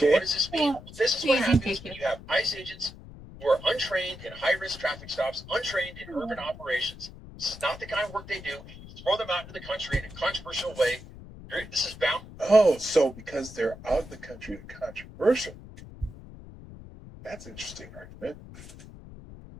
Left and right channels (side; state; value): left; noise; rumble, 16 dB below the sound